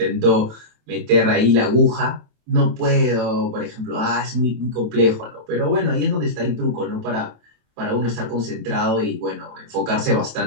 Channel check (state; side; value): late; left; 27 ms